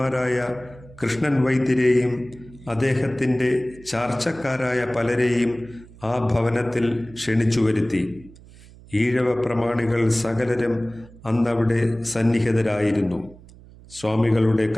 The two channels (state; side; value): noise; right; hum, 22 dB below the sound